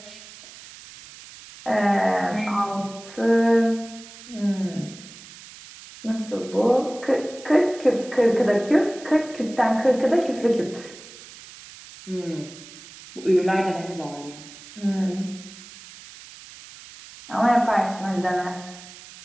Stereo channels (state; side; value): noise; right; hiss, 18 dB below the sound